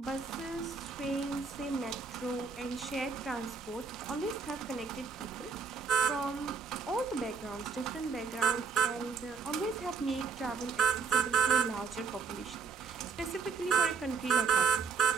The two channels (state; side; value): quieter; left; 5.6 dB